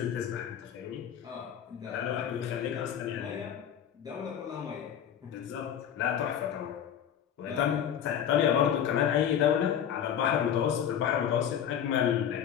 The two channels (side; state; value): right; quieter; 9.1 dB